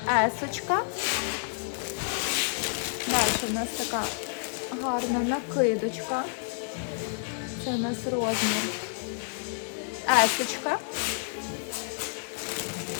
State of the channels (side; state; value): right; silent; 58 dB below the other